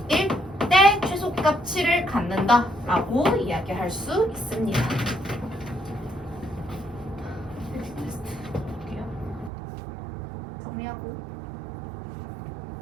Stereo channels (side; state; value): left; drops out; at 9.5 s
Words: 때 최소값 7을 갖는다라고 이야기할 수 있습니다. 정리하고